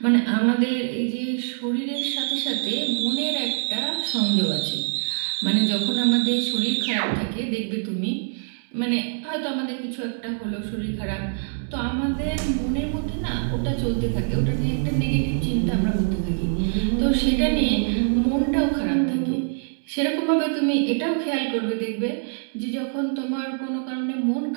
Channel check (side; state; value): left; silent; digital silence